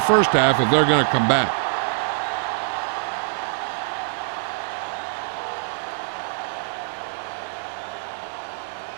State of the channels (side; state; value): left; silent; digital silence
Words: half if they're going to come back.